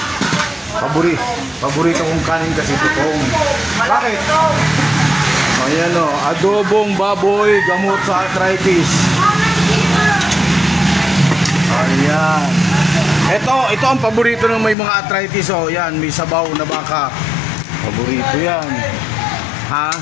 Paborito kong kanin kasi tutong. Bakit? Ayan o, adobong baboy, gamot sa arthritis. Ayan. Ito ang paborito ng may mga arthritis. O, yan, may sabaw na baka. Paborito yan. Ha?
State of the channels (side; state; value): right; drops out; at 14.8 s